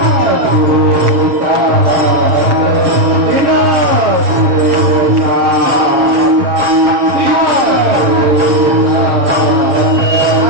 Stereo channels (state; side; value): late; left; 7.4 ms